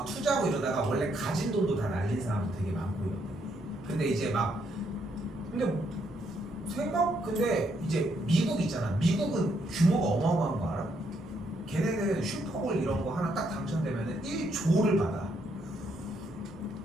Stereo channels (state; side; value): noise; left; hum, 25 dB below the sound